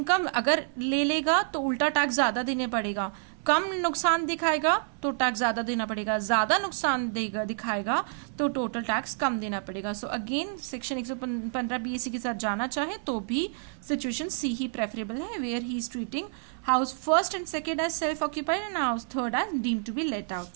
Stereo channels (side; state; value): left; silent; 56 dB below the other